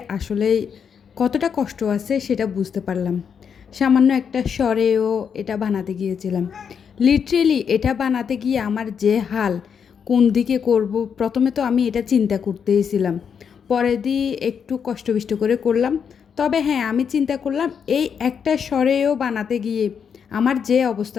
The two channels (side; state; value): right; quieter; 7.1 dB